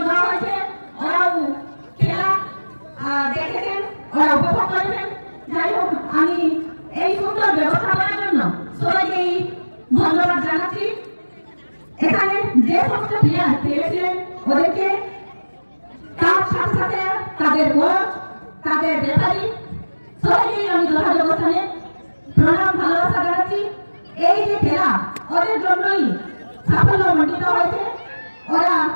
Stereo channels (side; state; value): both; inverted; correlation -1.00